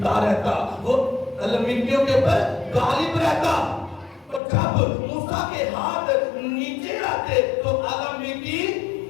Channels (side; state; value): right; drops out; at 4.4 s